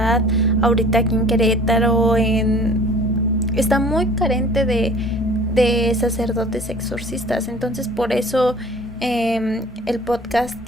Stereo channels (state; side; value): normal; both; correlation 0.48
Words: Ahorita aquí en Querétaro está muy carente de sacerdotes exorcistas. Entonces por eso el podcast